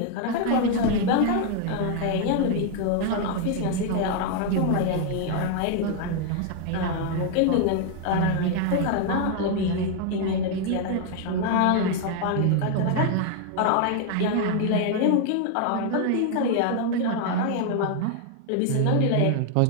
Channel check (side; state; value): both; different; correlation 0.00